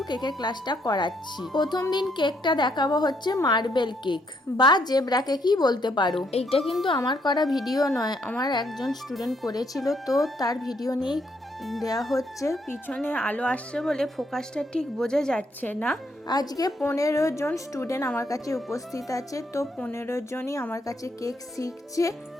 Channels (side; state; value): both; normal; correlation 0.73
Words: কেকের ক্লাসটা করাচ্ছি। প্রথম দিন কেকটা দেখাবো হচ্ছে মার্বেল কেক বা জেব্রা কেকই বলতে পারো। এইটা কিন্তু আমার করা ভিডিও নয়, আমার একজন স্টুডেন্ট করেছিল, তো তার ভিডিও নিয়েই দেওয়া হচ্ছে। পিছনে আলো আসছে বলে ফোকাসটা ঠিক বোঝা যাচ্ছে না। আজকে 15 জন স্টুডেন্ট আমার কাছে উপস্থিত আছে, তো 15 জনই আমার কাছে কেক শিখছে।